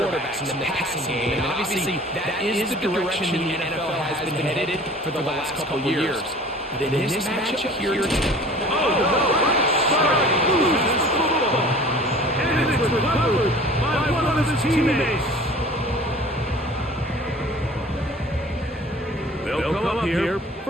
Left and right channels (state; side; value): normal; both; correlation 0.46